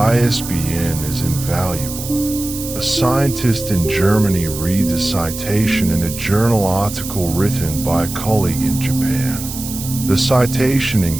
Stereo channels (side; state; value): right; noise; hiss, 9 dB below the sound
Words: is invaluable. A scientist in Germany reads a citation in a journal article written by a colleague in Japan. The citation